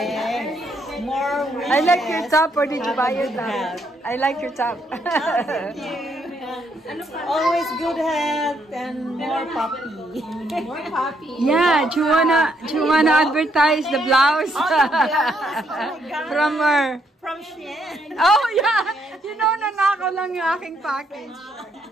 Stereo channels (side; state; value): both; normal; correlation 0.74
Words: More wishes. I like your top, or did you buy your top? I like your top. Thank you. Always good health and more puppy. More puppy. Yeah, do you wanna advertise the blouse? From her. From Shein. Oh yeah, you know, nanakaw lang yung aking package.